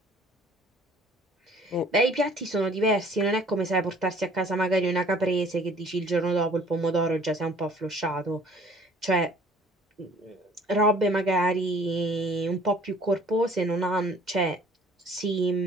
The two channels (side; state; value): both; normal; correlation 0.54